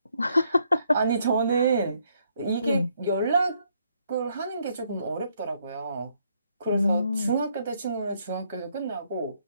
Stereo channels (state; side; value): inverted; both; correlation -0.72